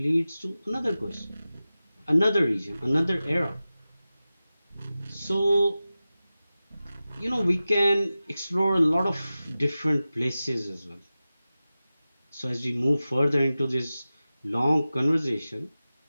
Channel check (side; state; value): both; inverted; correlation -0.95